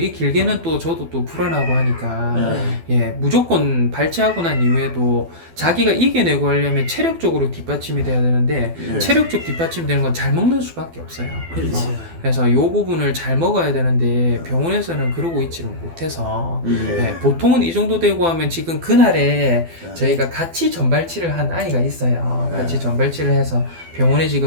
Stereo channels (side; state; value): left; late; 12 ms